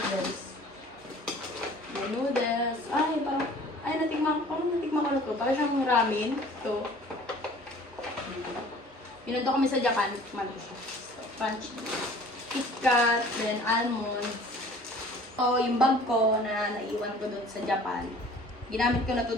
Then, noodles. Natikman ko na to. Para siyang ramen. Ito. Pinundo kami sa Japan. Tikman ko siya. Crunchy. KitKat, then almonds. So, yung bag ko na naiwan ko doon sa Japan, ginamit ko na to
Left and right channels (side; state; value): both; normal; correlation 0.49